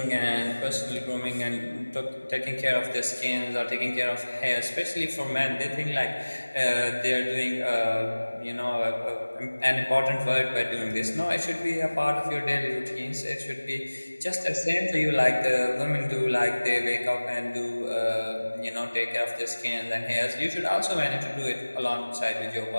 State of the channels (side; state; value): both; inverted; correlation -1.00